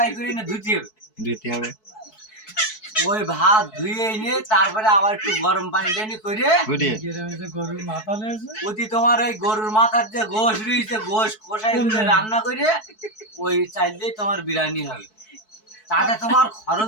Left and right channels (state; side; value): late; right; 4.6 ms